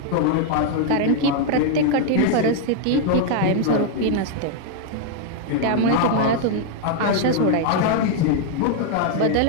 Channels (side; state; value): both; different; correlation 0.00